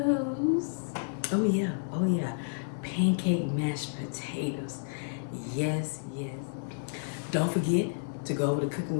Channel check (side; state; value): right; silent; digital silence